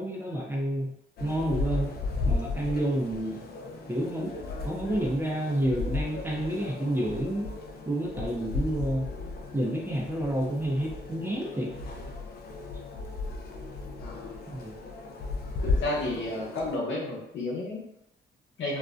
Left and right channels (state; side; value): normal; both; correlation 0.75